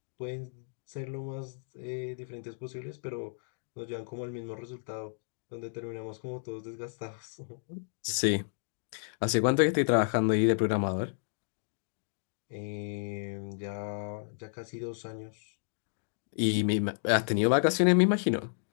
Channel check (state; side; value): silent; right; digital silence